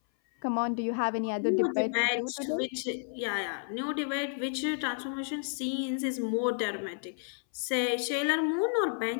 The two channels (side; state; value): right; silent; 57 dB below the other